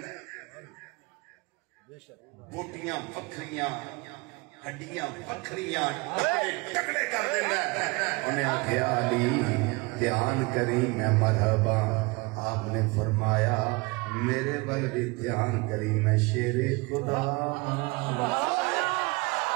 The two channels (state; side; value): quieter; left; 25.8 dB